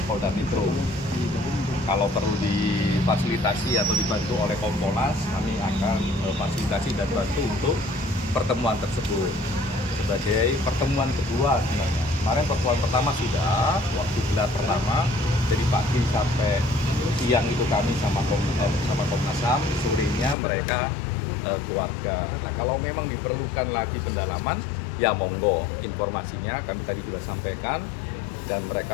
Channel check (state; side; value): drops out; right; at 20.4 s